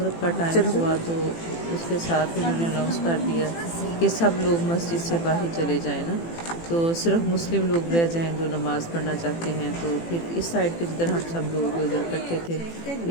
का टाइम हुआ तो उसके साथ ही उन्होंने अनाउंस कर दिया कि सब लोग मस्जिद से बाहर चले जाएं ना, तो सिर्फ मुस्लिम लोग रह जाएं जो नमाज़ पढ़ना चाहते हैं। तो फिर इस साइड पे जिधर हम सब लोग इधर इकट्ठे थे,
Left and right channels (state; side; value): late; right; 18 ms